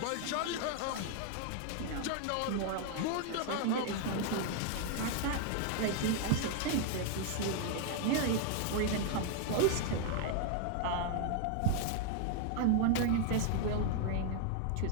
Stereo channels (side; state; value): both; different; correlation 0.00